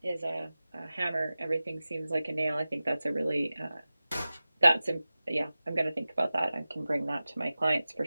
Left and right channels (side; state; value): both; inverted; correlation -0.96